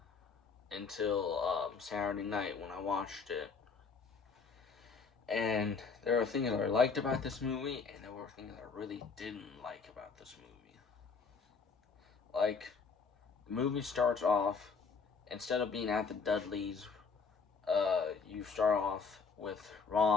until Saturday night when I watched it. And there are things that I liked about this movie, and there were things I really didn't like about this movie. Like, the movie starts off, instead of being at the Dudleys, you start off with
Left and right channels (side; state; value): right; quieter; 5.1 dB